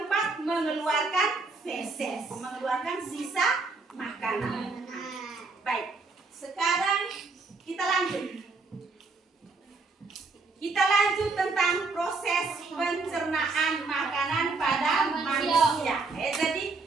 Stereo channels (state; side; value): quieter; left; 3.9 dB